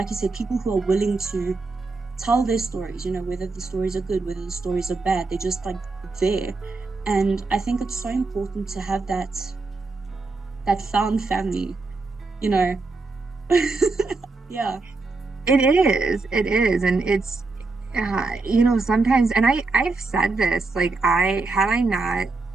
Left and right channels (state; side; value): quieter; left; 3.7 dB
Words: you said, people who are willing to tell their stories, whether the stories are good, whether the stories are bad, they're just like there. And I think it's so important to have that found family, yeah. It is. And it's, sometimes, and I've said this, like, had I not